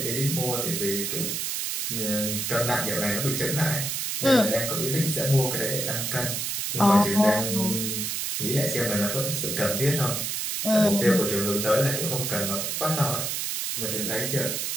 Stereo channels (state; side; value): noise; right; hiss, 2 dB below the sound